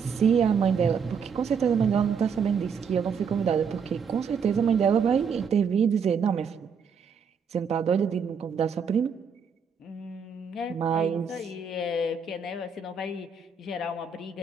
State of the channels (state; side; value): quieter; left; 6.0 dB